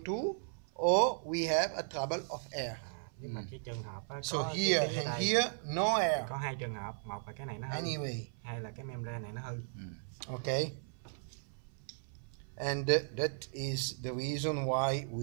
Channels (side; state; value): left; silent; 54 dB below the other